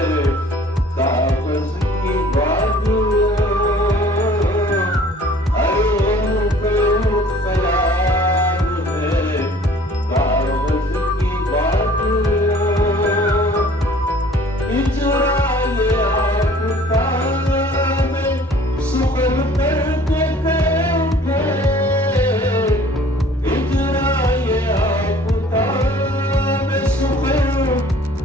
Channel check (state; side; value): normal; both; correlation 0.52